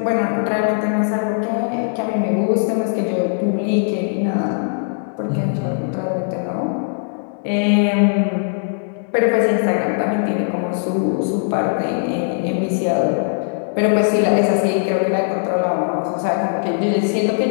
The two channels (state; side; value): silent; right; digital silence